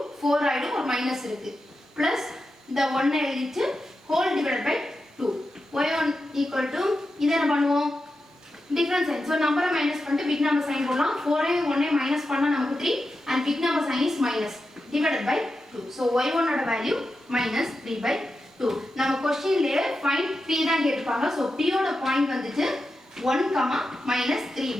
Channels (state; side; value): normal; both; correlation 0.90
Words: 4 ஆயிடும். ஒரு மைனஸ் இருக்கு. பிளஸ் இந்த 1 எழுதிட்டு whole divided by 2. y1 equal to இதை என்ன பண்ணுவோம்? Difference sign. ஸோ நம்பரை மைனஸ் பண்ணிட்டு பிக் நம்பர் சைன் போடலாம். 4 1 மைனஸ் பண்ணால் நமக்கு 3 and big number sign is minus divided by 2. So y1 ஓட வேல்யூ -3/2. நம்ம கொஸ்டின்லேயே ஃபைண்ட் p தான் கேட்டிருப்பாங்க. ஸோ p ஓட பாயிண்ட் வந்துட்டு 1,